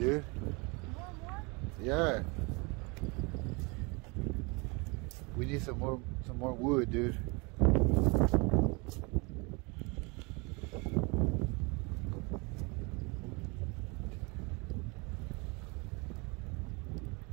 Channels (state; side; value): quieter; left; 29.1 dB